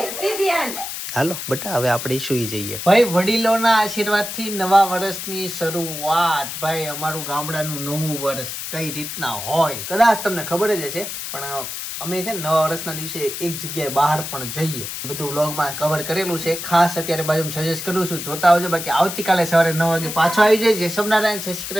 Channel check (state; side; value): noise; left; hiss, 7 dB below the sound